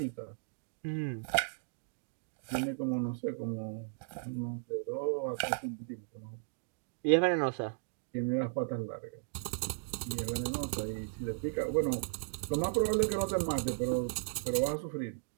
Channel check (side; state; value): left; silent; digital silence